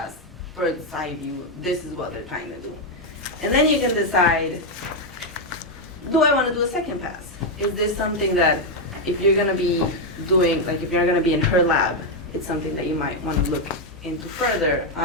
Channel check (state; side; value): normal; both; correlation 0.02